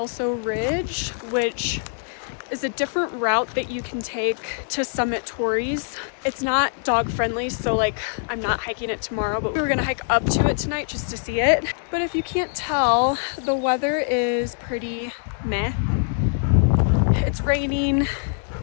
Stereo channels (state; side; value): silent; right; digital silence